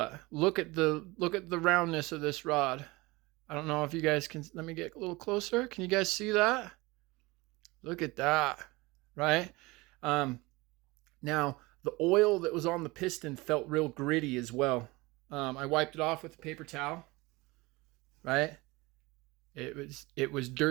look at the roundness of this rod. I don't know if you guys can. Let me get a little closer. Can you guys see that? Look at that, right? Now the oil that was on the piston felt real gritty as well. I wiped it off with a paper towel, right? It was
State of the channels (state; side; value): quieter; left; 22.7 dB